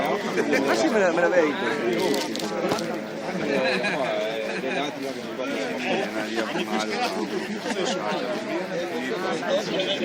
ma sì, me la vedi.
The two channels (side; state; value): both; identical; correlation 1.00